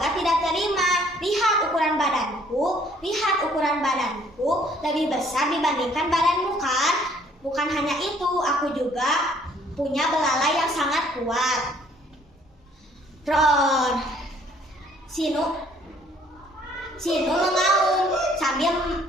tidak terima. Lihat ukuran badanku lebih besar dibandingkan badanmu kan? Bukan hanya itu, aku juga punya belalai yang sangat kuat. Roar. Sinu mengaum sambil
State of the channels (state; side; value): normal; both; correlation 0.61